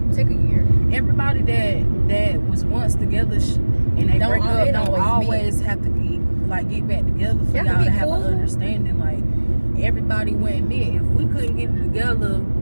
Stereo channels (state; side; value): inverted; both; correlation -1.00